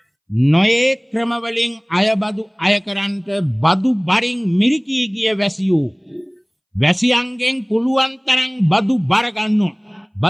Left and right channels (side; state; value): both; identical; correlation 1.00